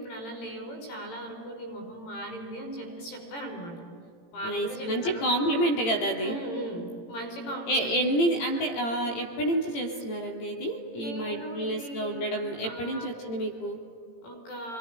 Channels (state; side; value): late; right; 18 ms